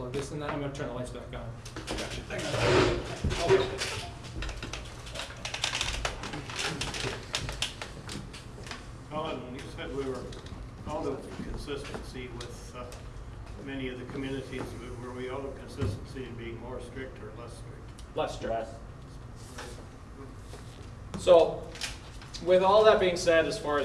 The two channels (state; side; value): identical; both; correlation 1.00